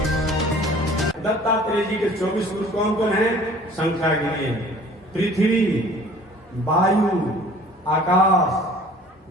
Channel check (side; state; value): both; normal; correlation 0.50